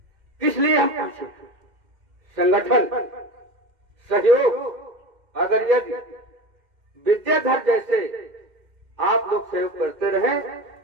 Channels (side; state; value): left; late; 2.1 ms